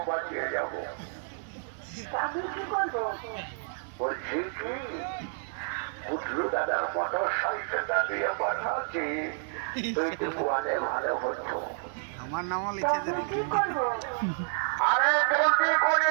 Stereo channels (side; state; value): left; silent; digital silence